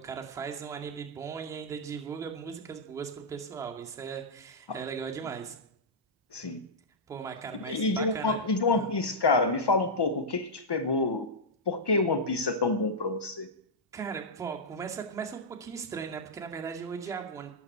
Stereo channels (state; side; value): normal; both; correlation -0.07